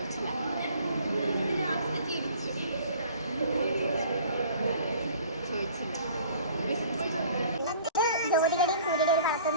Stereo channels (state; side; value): inverted; both; correlation -0.49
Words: ജ്യോതിയുടെയും സൂര്യയുടെയും ഒരു